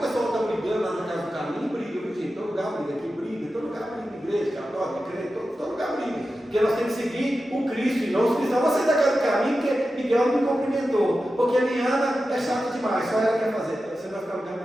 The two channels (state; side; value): normal; both; correlation 0.92